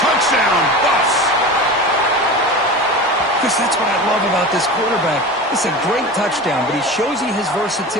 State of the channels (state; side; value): normal; both; correlation 0.31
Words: Touchdown, Buffs. Chris, that's what I love about this quarterback. It's a great touchdown, but he shows you his